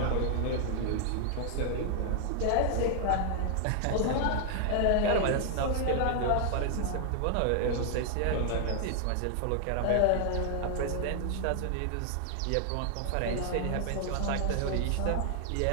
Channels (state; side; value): different; both; correlation 0.00